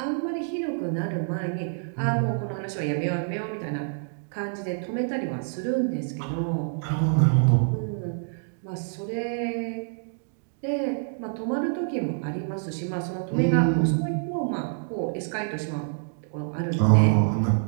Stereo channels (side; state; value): left; silent; digital silence